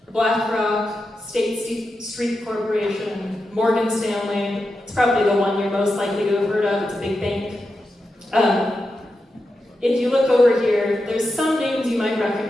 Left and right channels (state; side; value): normal; both; correlation 0.89